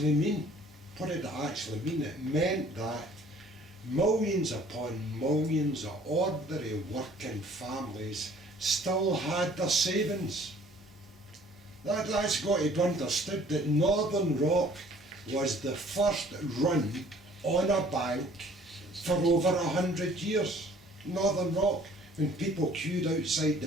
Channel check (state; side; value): normal; both; correlation 0.55